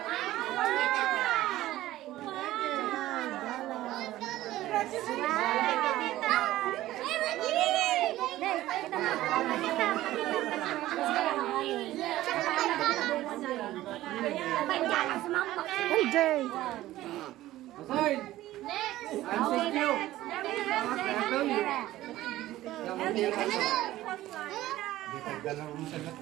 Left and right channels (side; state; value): left; quieter; 15.4 dB